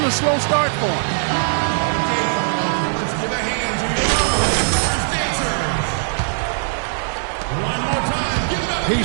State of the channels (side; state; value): left; silent; digital silence